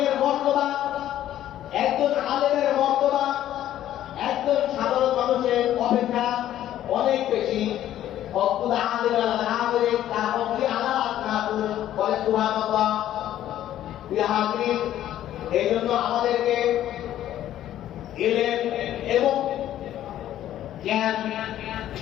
মর্তবা একজন সাধারণ মানুষের অপেক্ষা অনেক বেশি। হকুল আলিম আল আমির তা হকি আলা আতনাহু বলে সুবহানাল্লাহ। বিহাদিন এই জন্য আমাদেরকে ইলম এবং জ্ঞান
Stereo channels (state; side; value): quieter; right; 12.2 dB